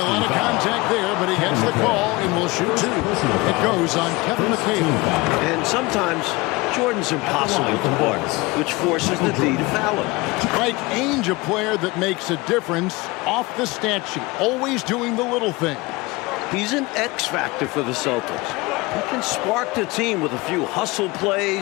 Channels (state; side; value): quieter; right; 23.2 dB